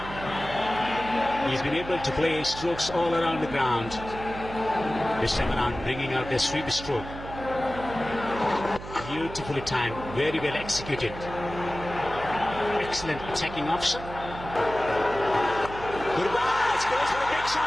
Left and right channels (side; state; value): right; noise; hum, 11 dB below the sound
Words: He's been able to play strokes all around the ground. This time around, bringing out their sweep stroke. Beautifully timed, very well executed. Excellent attacking option. Gurbaz goes for a big